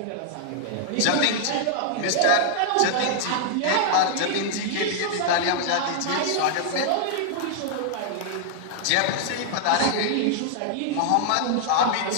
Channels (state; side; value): different; both; correlation -0.01